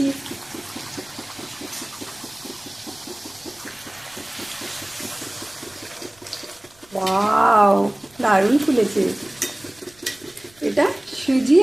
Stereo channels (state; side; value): noise; right; rumble, 29 dB below the sound